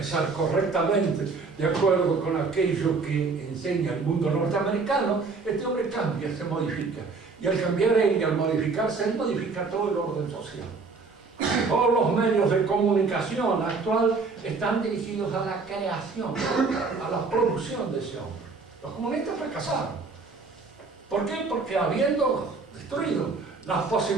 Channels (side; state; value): left; quieter; 4.3 dB